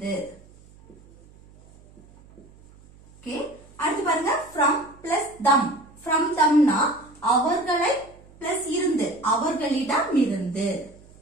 ஓகே, அடுத்து பாருங்க from plus them. from themனா அவர்களை plus இருந்து, அவர்களிடமிருந்து.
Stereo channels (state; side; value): noise; right; hum, 25 dB below the sound